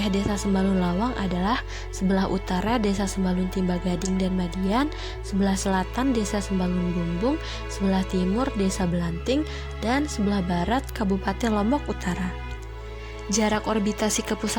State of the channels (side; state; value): both; identical; correlation 1.00